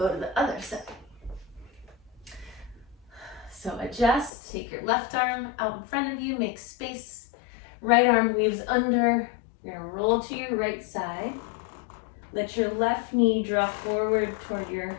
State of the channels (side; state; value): right; drops out; at 4.3 s